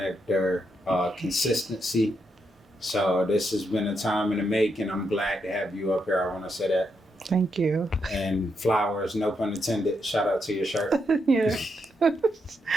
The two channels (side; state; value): both; normal; correlation 0.81